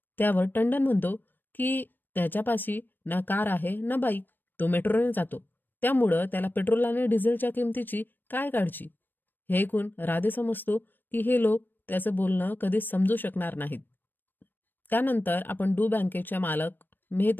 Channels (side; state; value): right; late; 0.093 ms